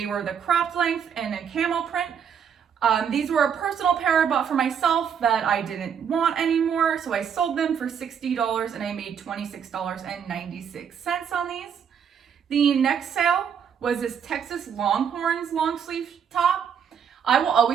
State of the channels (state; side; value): quieter; left; 7.7 dB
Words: were the cropped length and a camo print. These were a personal pair I bought for myself that I didn't want anymore, so I sold them for $60 and I made $26.96 on these. The next sale was this Texas Longhorns long sleeve top. I will